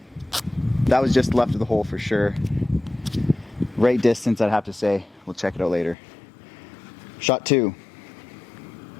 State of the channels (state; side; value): drops out; right; at 6.0 s